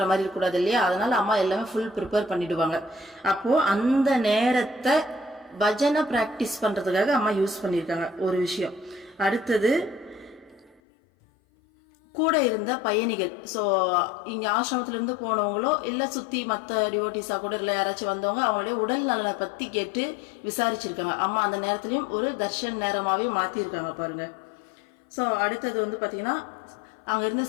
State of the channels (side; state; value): right; drops out; at 10.8 s